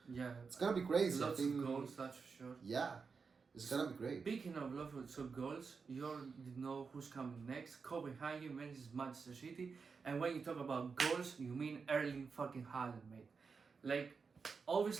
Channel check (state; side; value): quieter; left; 5.2 dB